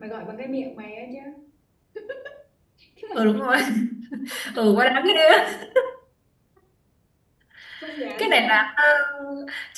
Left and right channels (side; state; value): both; identical; correlation 1.00